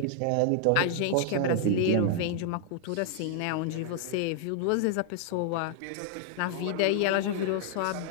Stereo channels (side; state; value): both; different; correlation 0.00